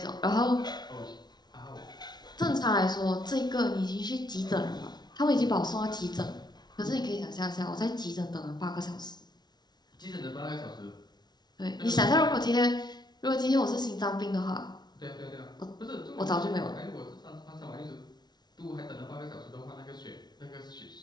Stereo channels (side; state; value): right; late; 0.20 ms